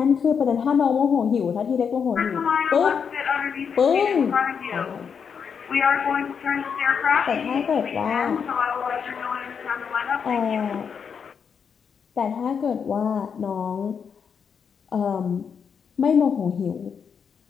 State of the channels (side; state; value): right; quieter; 6.7 dB